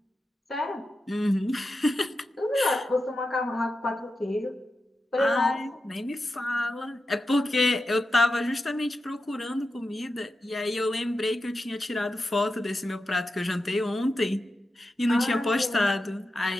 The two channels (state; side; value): normal; both; correlation 0.90